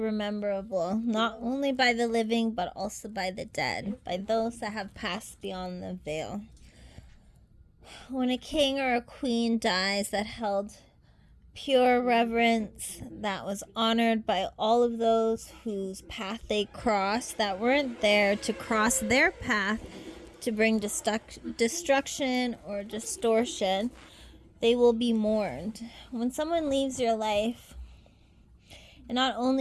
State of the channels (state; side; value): identical; both; correlation 1.00